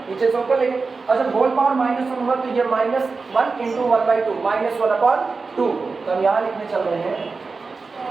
नीचे से ऊपर लेंगे, और जब होल पावर -1 होगा तो ये -1 इंटू 1/2 -1/2। तो हम यहाँ लिखने चल रहे हैं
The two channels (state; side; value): quieter; left; 4.3 dB